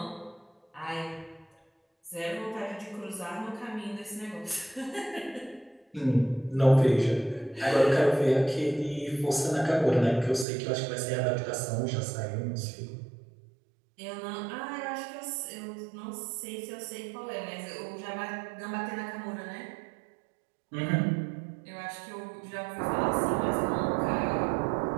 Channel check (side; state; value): left; drops out; at 10.5 s